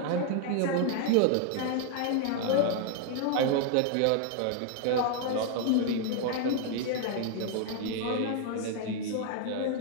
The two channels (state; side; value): different; both; correlation 0.00